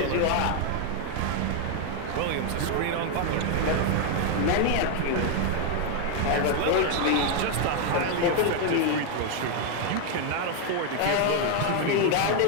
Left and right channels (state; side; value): different; both; correlation 0.01